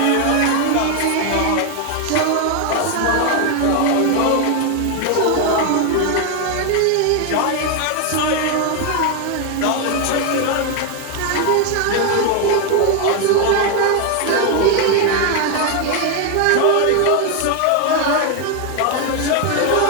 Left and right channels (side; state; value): both; different; correlation 0.01